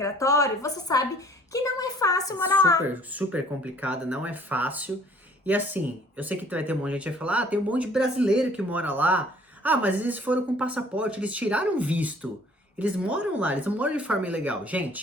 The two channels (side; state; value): both; normal; correlation 0.56